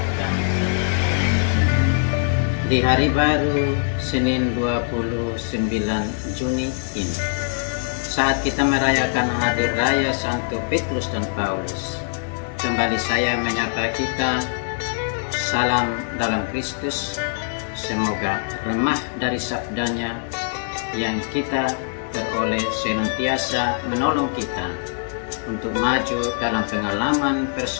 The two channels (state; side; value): silent; right; digital silence